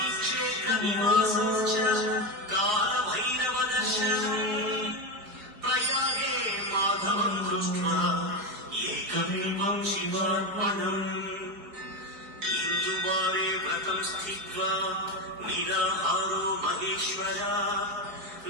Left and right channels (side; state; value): left; late; 4.7 ms